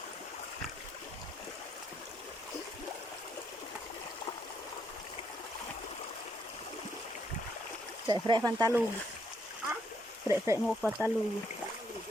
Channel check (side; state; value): both; normal; correlation 0.74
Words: Fre pantalog. Fre mo pantalog.